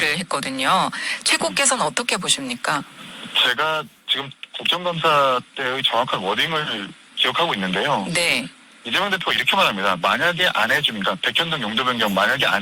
했거든요. 최고께서는 어떻게 보십니까? 제가 지금 국정감사 때의 정확한 워딩을 기억하고 있는데요. 네. 이재명 대표가 이렇게 말합니다. 만약에 안 해주면, 그러니까 백현동 용도 변경 만약에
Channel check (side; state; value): both; identical; correlation 1.00